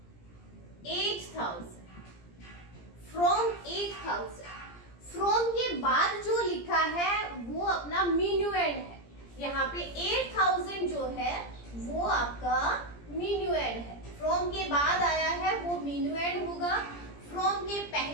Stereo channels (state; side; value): late; right; 17 ms